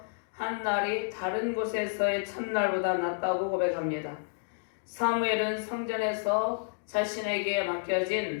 한 날이 다른 곳에서의 첫날보다 낫다고 고백합니다. 사무엘은 성전에서 자신에게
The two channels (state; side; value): silent; right; digital silence